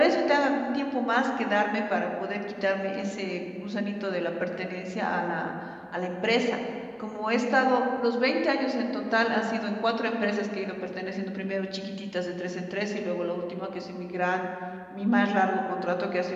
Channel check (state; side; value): identical; both; correlation 1.00